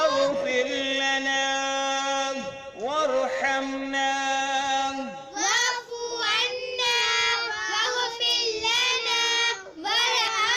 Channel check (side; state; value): both; identical; correlation 1.00